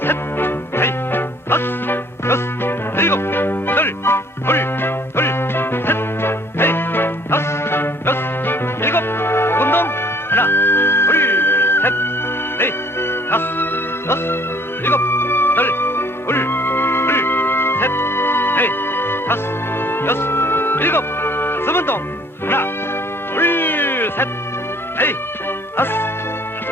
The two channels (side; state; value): both; normal; correlation 0.58